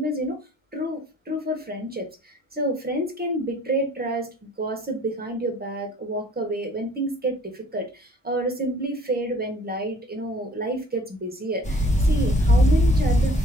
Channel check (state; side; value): normal; both; correlation 0.54